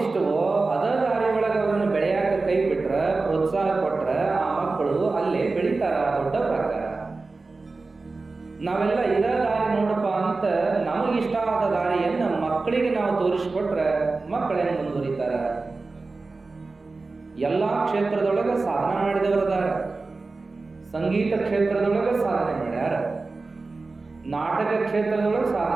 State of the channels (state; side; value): quieter; left; 3.7 dB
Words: ಅದರ ದಾರಿ ಒಳಗೆ ಅವರನ್ನು ಬೆಳೆಯಾಕ ಕೈ ಬಿಟ್ರ, ಪ್ರೋತ್ಸಾಹ ಕೊಟ್ರ ಆ ಮಕ್ಕಳು ಅಲ್ಲೇ ಬೆಳೀತಾರ, ದೊಡ್ಡವರಾಗ್ತಾರ. ನಾವೆಲ್ಲ ಇದ ದಾರಿ ನೋಡಪ್ಪ ಅಂತ ನಮಗಿಷ್ಟ ಆದ ದಾರಿಯನ್ನ ಮಕ್ಕಳಿಗೆ ನಾವು ತೋರಿಸ್ಕೊಟ್ರೆ ಮಕ್ಕಳೇನು ಮುಂದುವರಿತಾರ? ಎಲ್ಲಾ ಕ್ಷೇತ್ರದೊಳಗೆ ಸಾಧನೆ ಮಾಡಿದವರದಾರ. ಸಂಗೀತ ಕ್ಷೇತ್ರದೊಳಗೆ ಸಾಧನೆ ಮಾಡ್ಯಾರ, ನಾಟಕ ಕ್ಷೇತ್ರದೊಳಗೆ